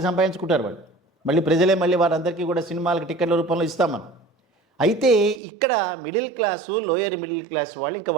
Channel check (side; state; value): left; drops out; at 5.4 s